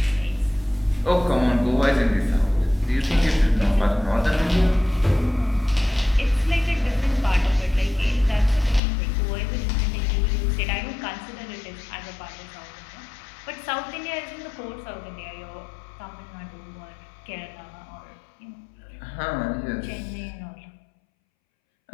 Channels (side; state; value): right; drops out; at 8.8 s